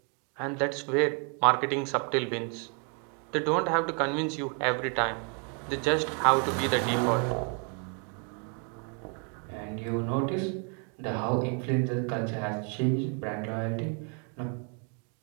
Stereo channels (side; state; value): left; quieter; 37.5 dB